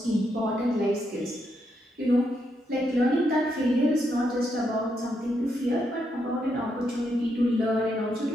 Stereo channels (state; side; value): normal; both; correlation 0.80